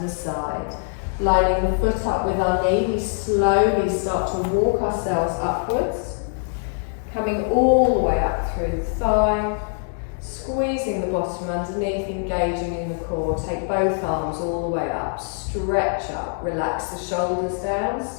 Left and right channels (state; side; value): silent; right; digital silence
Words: the side. Lining the foot up with our knee, we slowly start to walk ourselves upwards. Coming all the way up through the thigh. Squeezing the bottom underneath, engaging in the core. Take both arms all the way up. Stretch up. Relax the shoulders down.